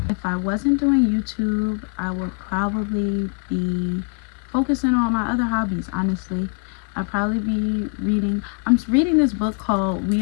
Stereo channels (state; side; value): quieter; right; 37.0 dB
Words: If I wasn't doing YouTube, I would probably be focusing on my other hobbies, honestly. I'd probably be reading. I'm reading this book called We